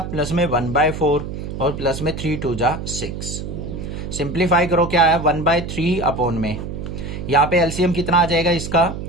प्लस में 1/4 और प्लस में 3 2 जा 6। सिंप्लीफाई करो क्या है 1/3 अपॉन में यहाँ पे एलसीएम कितना आ जाएगा इसका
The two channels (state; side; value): noise; right; hum, 7 dB below the sound